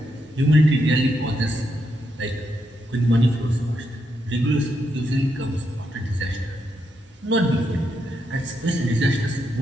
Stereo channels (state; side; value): normal; both; correlation 0.81